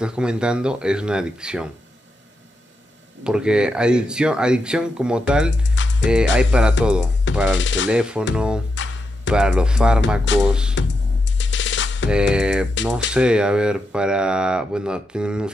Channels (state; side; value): normal; both; correlation 0.85